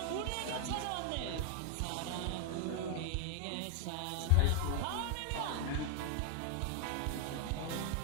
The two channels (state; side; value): different; both; correlation 0.01